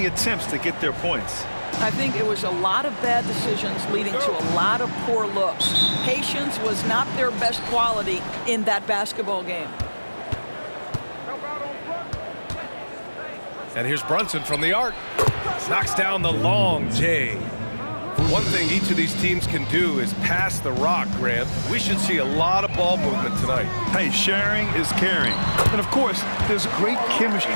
attempts to get their points. I think it was a lot of bad decisions leading to a lot of poor looks. Patience was not their best quality in that basketball game. And here's Brunson from the arc. Knocks down the long J. One thing each of these teams can do is pass the rock, Grant. We should see a lot of ball movement tonight. Hey, sharing is caring. And of course, there's great chemistry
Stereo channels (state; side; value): inverted; both; correlation -1.00